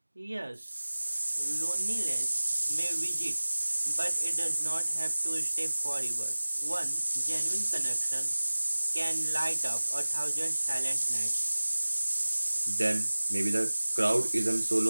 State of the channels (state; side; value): inverted; both; correlation -1.00